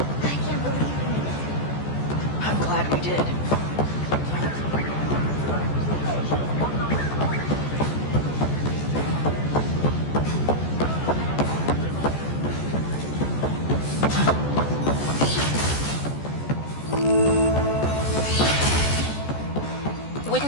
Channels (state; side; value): late; right; 14 ms